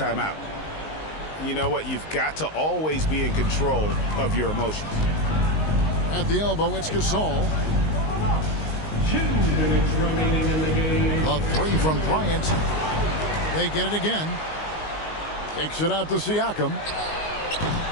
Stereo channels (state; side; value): late; right; 19 ms